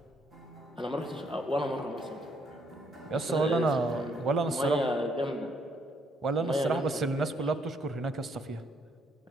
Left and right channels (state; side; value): normal; both; correlation 0.70